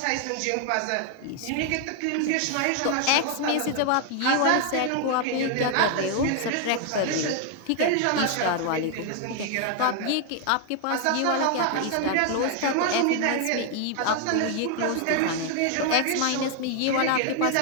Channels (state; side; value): different; both; correlation 0.00